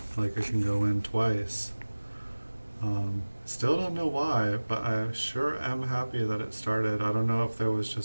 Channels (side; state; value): both; inverted; correlation -1.00